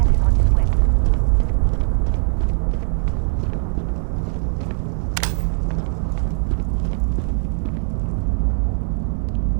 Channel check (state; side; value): silent; left; 66 dB below the other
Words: is on his way.